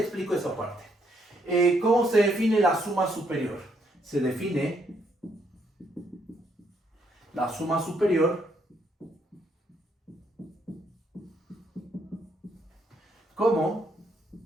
esa parte. ¿Cómo se define la suma superior? Se define la suma superior como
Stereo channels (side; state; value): both; normal; correlation 0.72